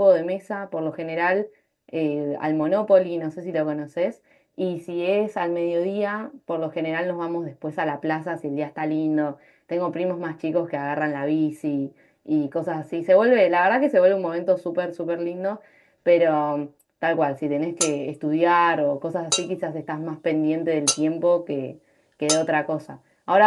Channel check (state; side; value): identical; both; correlation 1.00